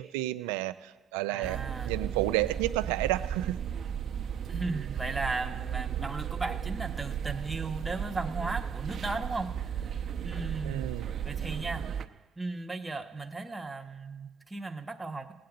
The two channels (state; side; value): quieter; left; 7.4 dB